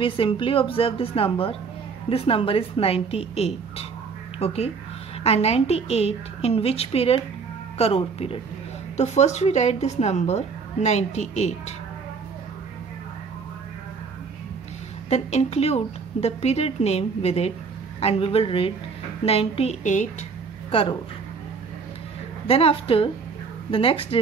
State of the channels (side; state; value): left; quieter; 5.2 dB